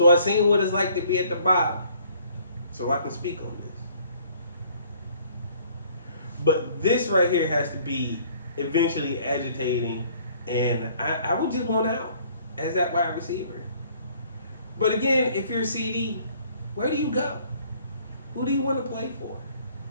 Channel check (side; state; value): both; inverted; correlation -0.58